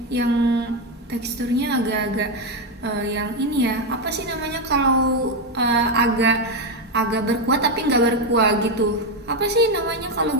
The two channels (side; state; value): both; normal; correlation 0.08